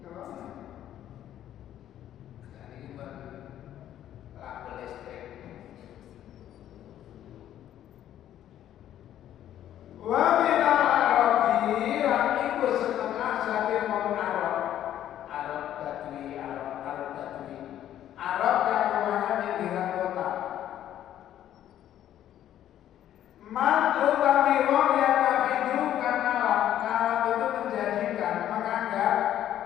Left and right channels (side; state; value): right; quieter; 11.5 dB